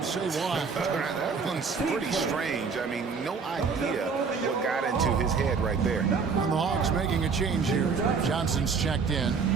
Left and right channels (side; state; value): left; quieter; 5.3 dB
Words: say why. That one's pretty strange. I mean, no idea what got into his head right there. And the Hawks making a change here. Johnson's checked in.